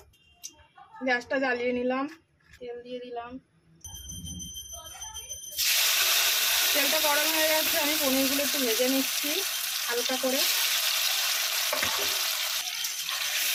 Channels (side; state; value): both; identical; correlation 1.00